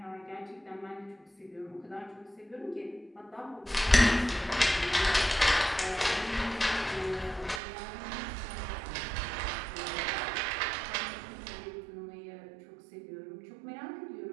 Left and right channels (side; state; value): left; drops out; at 7.6 s